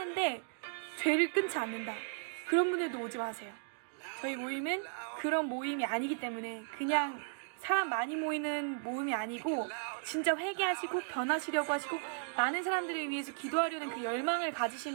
죄를 끊지 않는다. 그런 분들도 오지 마세요. 저희 모임은 그런 모임이 아니기 때문에, 그냥 사람 많이 모이는 모임이 아니고 진짜 회개하시고 변하시려고 하시고 많은 사람들을 위해서 기도하려는 그 열망을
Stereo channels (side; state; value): left; silent; digital silence